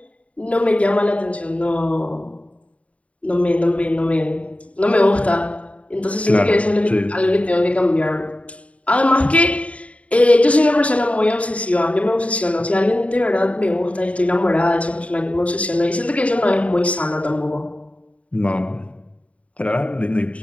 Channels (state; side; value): late; right; 0.065 ms